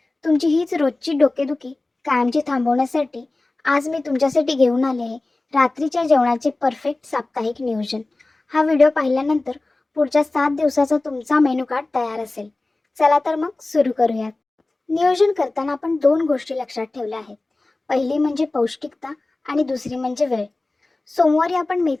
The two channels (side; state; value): right; quieter; 3.0 dB